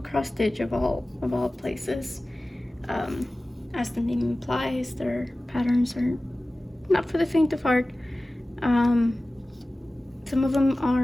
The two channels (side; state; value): both; normal; correlation 0.97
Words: Stitch, of all places. As the name implies, their patterns are not for the faint of heart. Some of them